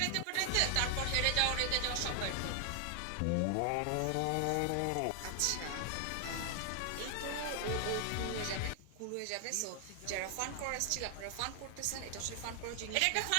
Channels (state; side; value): different; both; correlation 0.00